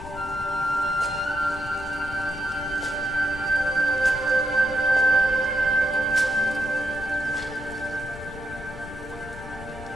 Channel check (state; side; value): noise; left; rumble, 14 dB below the sound